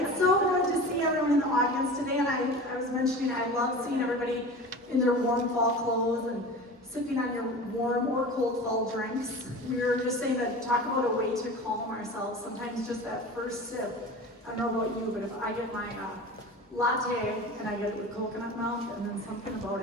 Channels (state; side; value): normal; both; correlation 0.34